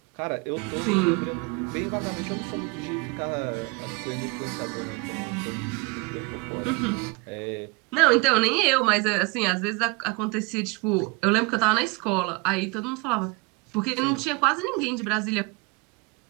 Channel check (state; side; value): quieter; left; 28.8 dB